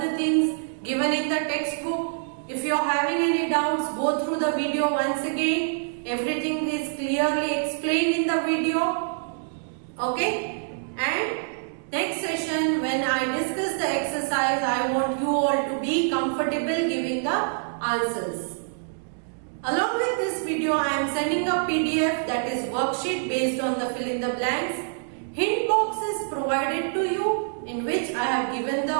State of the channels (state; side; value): silent; left; 61 dB below the other